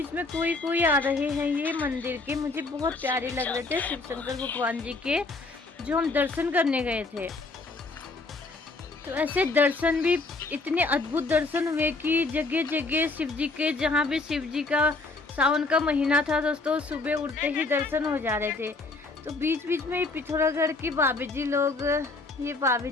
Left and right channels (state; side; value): quieter; right; 3.5 dB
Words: में कोई कोई आ रहे हैं ये मंदिर के, मुझे बहुत प्यारे लग रहे थे शिव शंकर भगवान जी के, जो हम दर्शन करने गए थे। तो ऐसे दर्शन भी इतने अद्भुत दर्शन हुए कि जगह जगह शिव जी के, जहाँ भी शिव जी का सावन का महीना था दोस्तों, सुबह उठते ही दर्शन हो जा रहे थे। तो बीच बीच में पिथौरागढ़ की भाभी जी लोग, ये भाभी